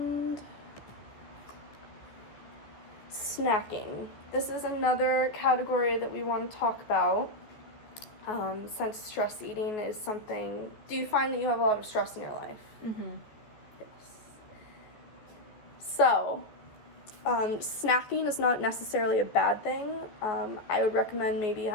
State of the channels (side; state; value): right; late; 14 ms